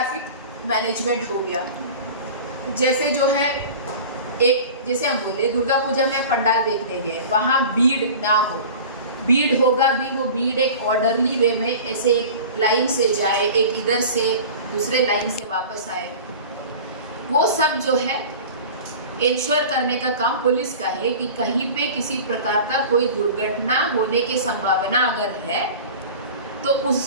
मैनेजमेंट हो गया, जैसे जो है एक, जैसे हम बोले दुर्गा पूजा में पंडाल देखने गए, वहाँ भीड़ ना हो, भीड़ होगा भी, वो भीड़ एक ऑर्डरली वे में ऐसे एक लाइन से जाए, एक इधर से दूसरे लाइन से वापस आए, वो सब जो है इंश्योर करने का काम पुलिस का है कि कहीं पे किसी प्रकार का कोई दुर्घटना होने की संभावना अगर है तो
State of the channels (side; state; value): both; inverted; correlation -0.37